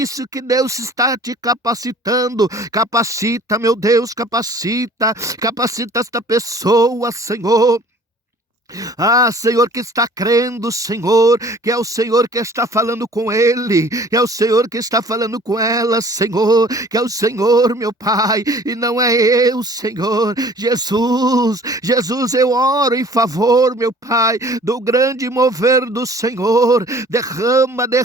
que Deus está te capacitando. Capacita, meu Deus, capacita esta pessoa, Senhor. Senhor, que está crendo, Senhor, que é o Senhor que está falando com ele, que é o Senhor que está falando com ela, Senhor, que é o Senhor, meu Pai, e não é eu, Senhor. Jesus, eu oro em favor, meu Pai, do grande mover do Senhor. Derrama,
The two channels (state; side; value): normal; both; correlation 0.51